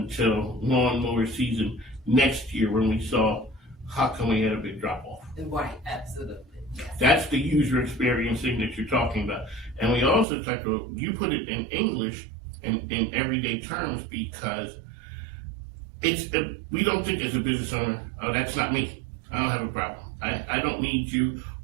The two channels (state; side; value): drops out; left; at 10.2 s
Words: lawnmower season next year when we saw how come we had a big drop off. Right, absolutely. That's the user experience thing that you're talking about. And we also talked about, you put it in English and in everyday terms because we don't think as a business owner, oh, that's not me. I don't have a problem. I don't need you,